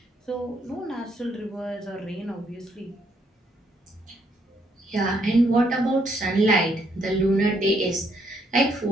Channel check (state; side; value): normal; both; correlation 0.72